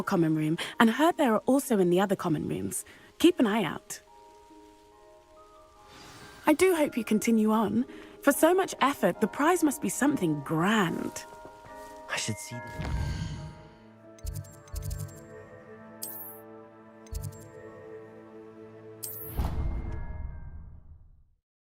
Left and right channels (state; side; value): identical; both; correlation 1.00